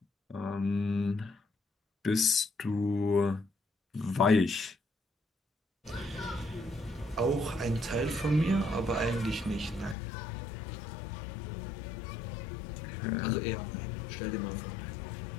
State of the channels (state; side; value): drops out; right; at 10.0 s